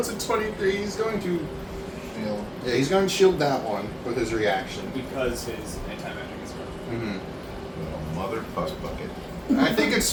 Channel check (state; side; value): identical; both; correlation 1.00